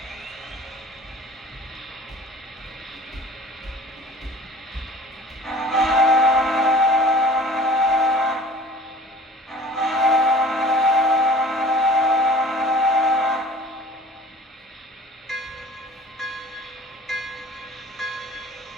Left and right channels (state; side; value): normal; both; correlation 0.46